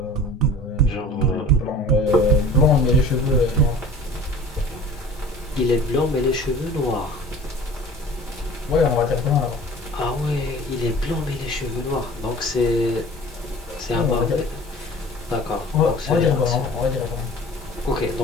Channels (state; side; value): normal; both; correlation 0.43